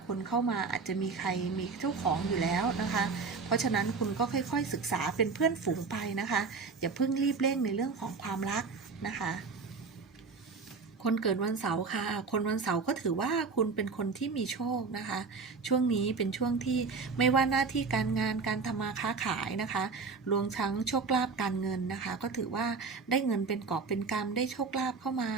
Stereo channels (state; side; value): quieter; left; 4.7 dB